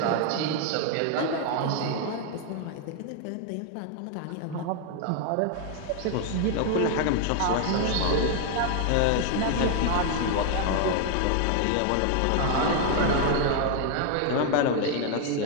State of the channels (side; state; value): both; different; correlation 0.00